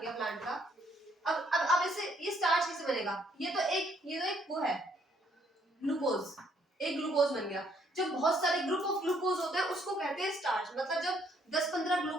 प्लांट का. अब इसे ये स्टार्च कैसे बनेगा. ये तो एक वो है ग्लूकोज, एक ग्लूकोज बन गया. जब बहुत सारे ग्रुप ऑफ ग्लूकोज होते हैं उसको कहते हैं स्टार्च. मतलब जब 10-15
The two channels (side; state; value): both; normal; correlation 0.68